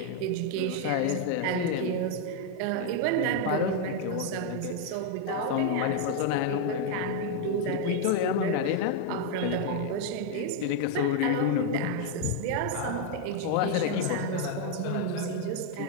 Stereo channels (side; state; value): both; different; correlation 0.00